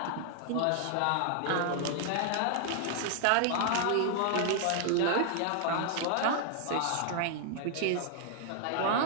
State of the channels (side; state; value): both; different; correlation 0.00